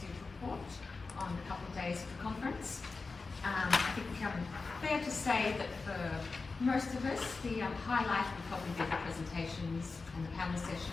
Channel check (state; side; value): quieter; right; 4.1 dB